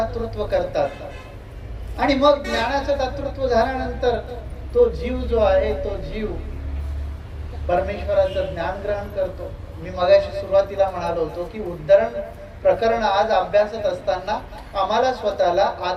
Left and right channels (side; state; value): both; identical; correlation 1.00